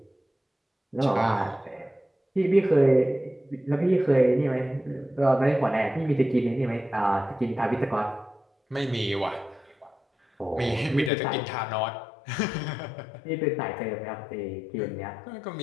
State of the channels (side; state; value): right; drops out; at 11.1 s